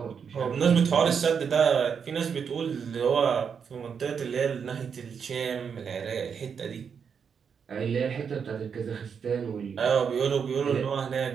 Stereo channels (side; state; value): left; quieter; 6.7 dB